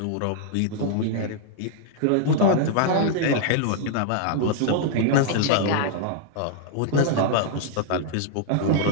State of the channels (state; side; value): different; both; correlation -0.01